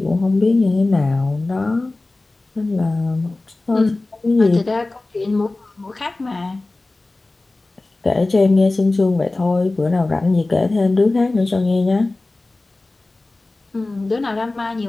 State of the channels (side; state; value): right; quieter; 3.1 dB